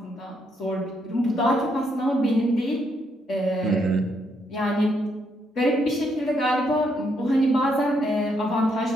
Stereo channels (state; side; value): normal; both; correlation 0.76